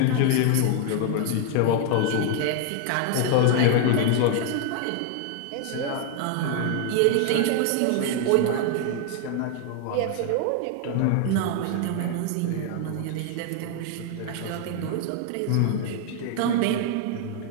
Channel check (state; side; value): different; both; correlation 0.00